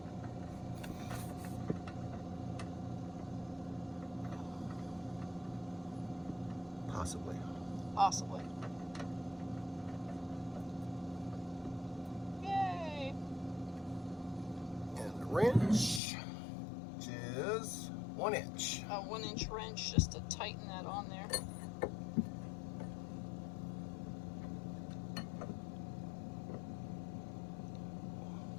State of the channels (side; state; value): right; drops out; at 16.0 s